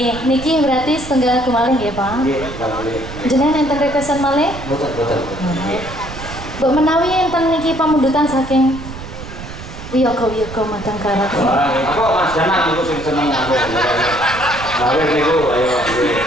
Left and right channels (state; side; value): noise; right; rumble, 12 dB below the sound